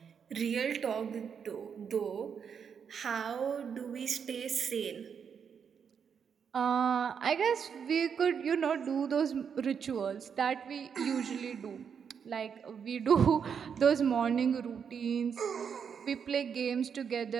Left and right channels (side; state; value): left; quieter; 7.1 dB